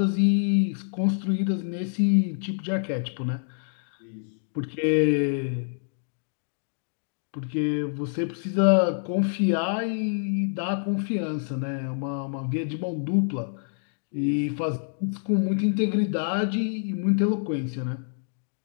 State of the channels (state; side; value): silent; right; digital silence